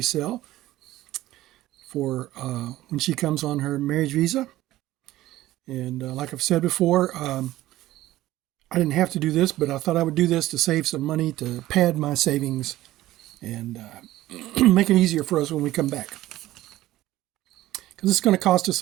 for when she comes on her marriage visa. And like I've said before, I didn't have to do this, but I thought I would do this to save some money to pad my savings and make it easier for us when we come back. Because it's going to cost us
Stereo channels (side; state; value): left; quieter; 15.7 dB